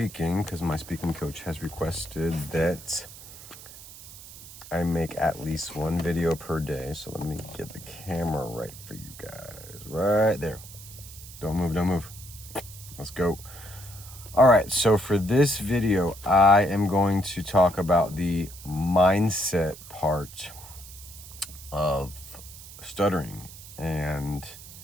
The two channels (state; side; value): noise; right; hiss, 16 dB below the sound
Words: because my speaking coach has requested that I make at least one video per day. So let me get the camera right for you guys. Right there. Don't move, don't move. Let's go. All right, so for this video, I am going to talk about the mindset part of stuttering and